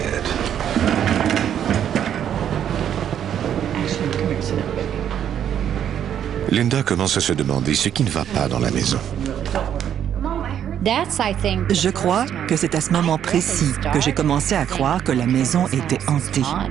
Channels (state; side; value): quieter; left; 9.6 dB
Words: Actually, come here, sit down, baby. Linda commence à se demander ce qui ne va pas dans la maison. Je crois que c'est à ce moment précis que j'ai commencé à croire que la maison était hantée.